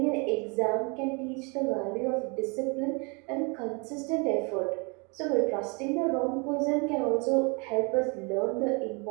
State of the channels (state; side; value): quieter; left; 32.2 dB